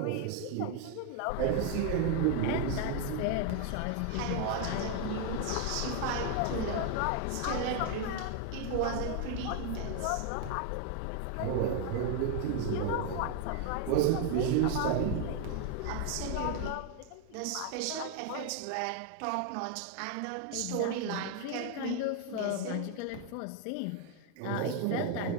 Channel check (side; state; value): both; different; correlation 0.01